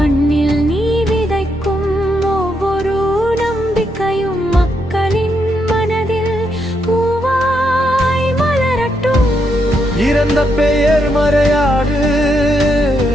நீ விதைக்கும் ஒவ்வொரு நம்பிக்கையும் மக்களின் மனதில் பூவாய் மலரட்டும். இறந்த பெயர் மறையாது,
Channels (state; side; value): normal; both; correlation 0.79